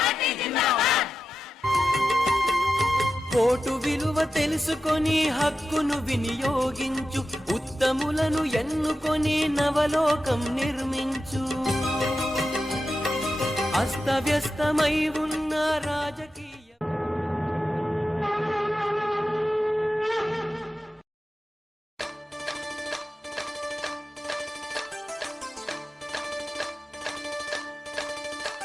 ఓటు విలువ తెలుసుకొని హక్కును వినియోగించు, ఉత్తములను ఎన్నుకొని నవలోకం నిర్మించు. అస్తవ్యస్తమై ఉన్న రాజకీయ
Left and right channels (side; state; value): both; normal; correlation 0.91